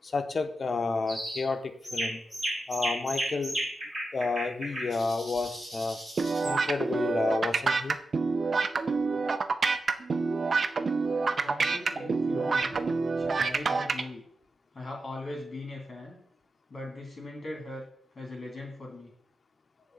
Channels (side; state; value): both; normal; correlation 0.89